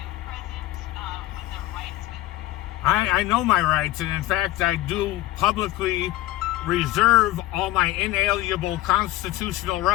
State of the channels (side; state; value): right; quieter; 16.4 dB